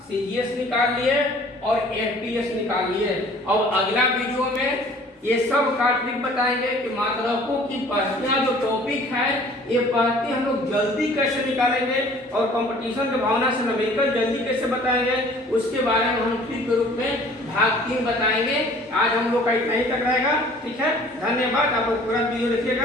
सीजीएस निकाल लिए और एफपीएस निकाल लिए। अब अगला वीडियो में ये सब का ट्रिक बताएंगे कि मात्रकों की पहतियां जो टॉपिक है, ये पहती हम लोग जल्दी कैसे निकालेंगे और कंपटीशन की भावना से न्यूमेरिकल जल्दी कैसे बताएंगे, उसके बारे में हम ट्रिक के रूप में भाग 3 बताएंगे। आज हम लोग का इतना ही तक रहेगा, ठीक है। धन्यवाद। आप लोग पूरा वीडियो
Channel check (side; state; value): both; normal; correlation 0.51